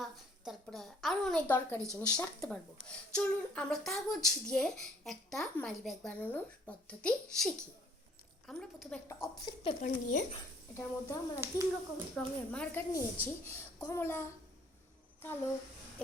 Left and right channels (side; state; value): both; normal; correlation 0.59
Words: তারপরে আরও অনেক দরকারি জিনিস রাখতে পারবো। চলুন আমরা কাগজ দিয়ে একটা মানি ব্যাগ বানানোর পদ্ধতি শিখি। আমরা প্রথমে একটা অফসেট পেপার নিয়ে এটার মধ্যে আমরা 3 রকম রঙের মার্কার নিয়েছি, কমলা, কালো